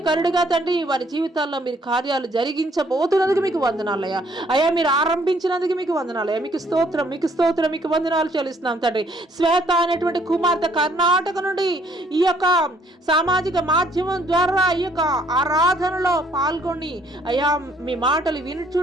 తండ్రి వారి జీవితాల్లో మీరు కార్యాలు జరిగించబోతున్నందుకు మీకు వందనాలయ్యా. అయ్యా మీరు ఆరంభించినందుకు మీకు వందనాలయ్యా. మీకు స్తోత్రం, మీకు స్తోత్రం, మీకు వందనాలు చెల్లిస్తున్నాం తండ్రి. శ్వేత అనేటువంటి కుమార్తె కర్ణాటక నుండి ఈ యొక్క సామాజిక మాధ్యమం ద్వారా ఈ యొక్క ఆరాధనలో పాల్గొని అయ్యా మీ మాటలు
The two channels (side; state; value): both; normal; correlation 0.64